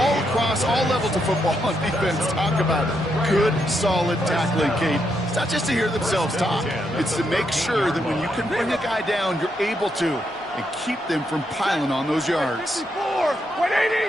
across all levels of football on defense talk about it. Good, solid tackling, Kate. It's not just to hear themselves talk. It's to make sure that when you can bring a guy down, you're able to, and keep them from piling on those yards.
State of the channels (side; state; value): both; normal; correlation 0.80